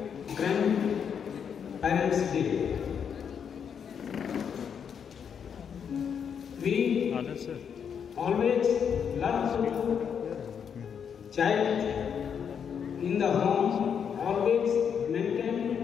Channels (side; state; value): right; quieter; 7.4 dB